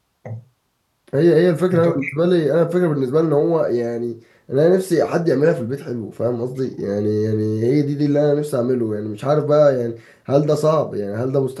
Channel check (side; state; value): both; identical; correlation 1.00